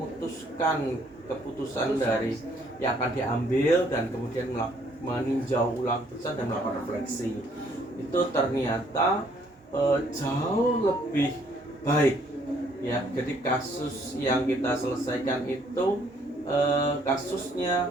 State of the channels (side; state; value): both; normal; correlation 0.65